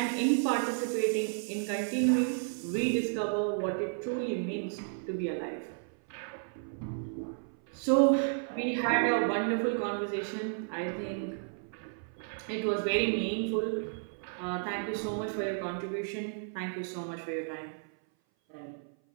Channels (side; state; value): left; silent; 56 dB below the other